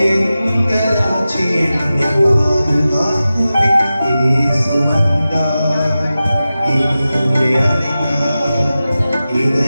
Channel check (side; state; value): both; inverted; correlation -0.94